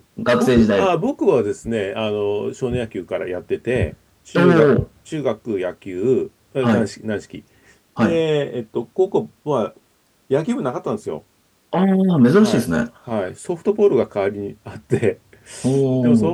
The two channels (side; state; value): both; identical; correlation 1.00